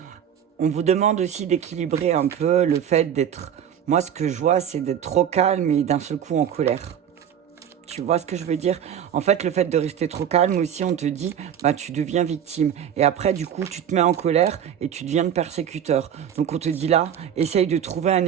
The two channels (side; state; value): left; quieter; 9.1 dB